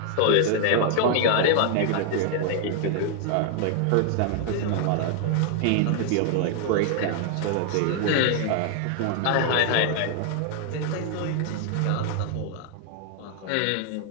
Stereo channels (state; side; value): different; both; correlation 0.00